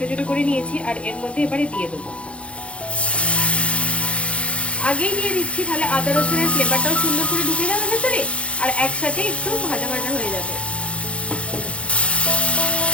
ছোট করে নিয়েছি। আর এর মধ্যে এবারে দিয়ে দেবো, আগেই দিয়ে দিচ্ছি, তাহলে আদা রসুনের ফ্লেভারটাও সুন্দর করে ঢুকে যাবে ভেতরে আর একসাথে একটু ভাজা ভাজা হয়ে যাবে।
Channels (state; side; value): late; right; 0.061 ms